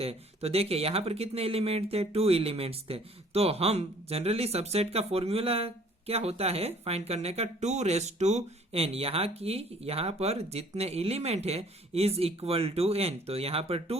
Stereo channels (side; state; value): both; normal; correlation 0.56